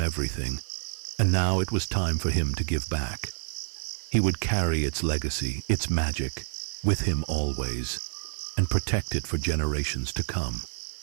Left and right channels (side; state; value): left; silent; digital silence